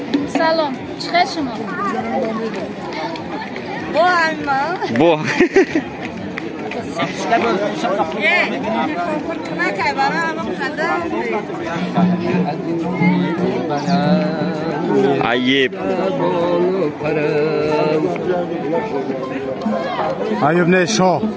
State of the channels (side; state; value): both; identical; correlation 1.00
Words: سلام چخیر شما با اما با عیب ایوب نه شاه